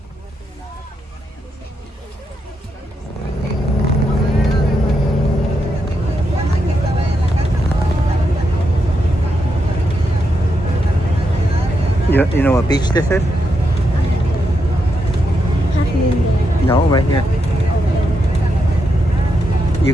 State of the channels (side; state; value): both; normal; correlation 0.83